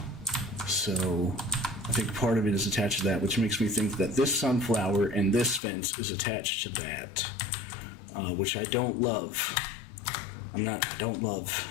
So I think part of it is attached to that, which makes me think that this sunflower and this fence is attached to that, which I don't love. I don't love.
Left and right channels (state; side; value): drops out; right; at 5.6 s